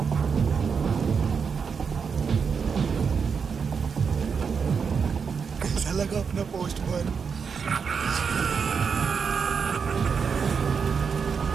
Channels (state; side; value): quieter; left; 6.0 dB